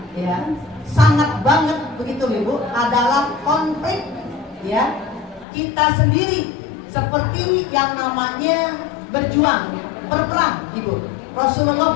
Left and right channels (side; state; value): right; drops out; at 5.5 s